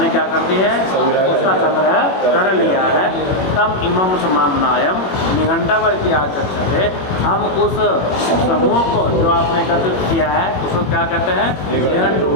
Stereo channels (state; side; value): late; right; 21 ms